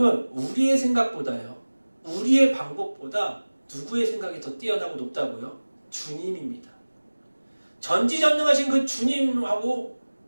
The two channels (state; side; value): inverted; both; correlation -1.00